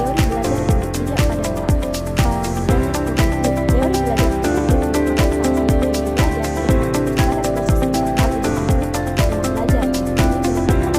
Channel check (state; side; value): identical; both; correlation 1.00